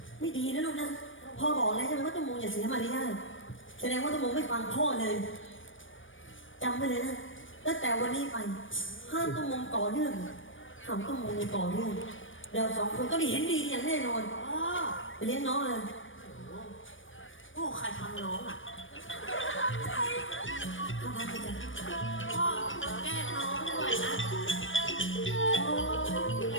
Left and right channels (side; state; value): right; late; 0.57 ms